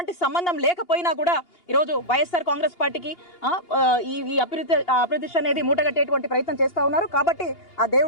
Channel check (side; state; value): right; late; 2.8 ms